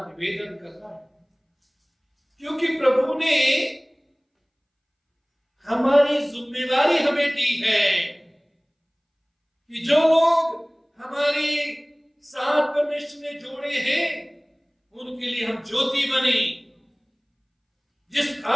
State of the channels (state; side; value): identical; both; correlation 1.00